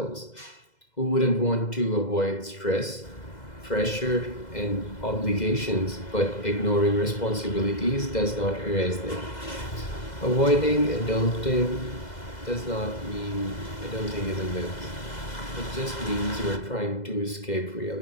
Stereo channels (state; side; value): late; right; 2.0 ms